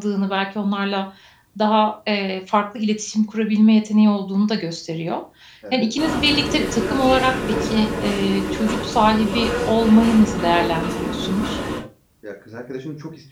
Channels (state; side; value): identical; both; correlation 1.00